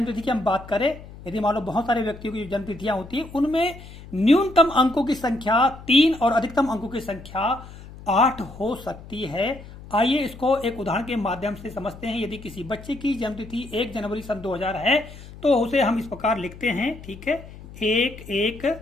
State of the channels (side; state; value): left; noise; hum, 16 dB below the sound